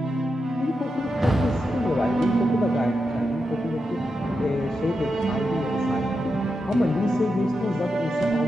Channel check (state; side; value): normal; both; correlation 0.87